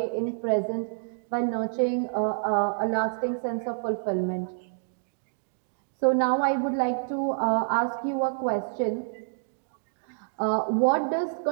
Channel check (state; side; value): silent; left; digital silence